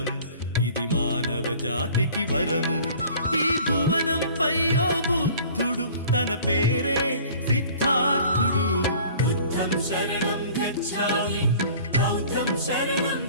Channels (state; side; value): inverted; both; correlation -0.48